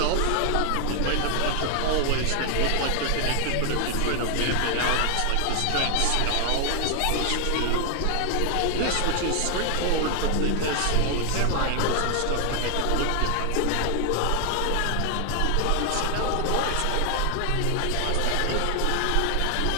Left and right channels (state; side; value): different; both; correlation 0.00